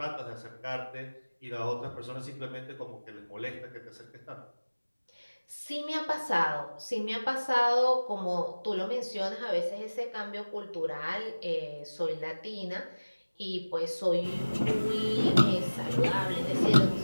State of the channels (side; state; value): both; inverted; correlation -1.00